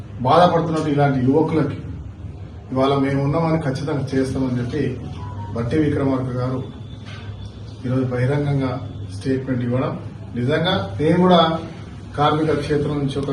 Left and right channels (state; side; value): identical; both; correlation 1.00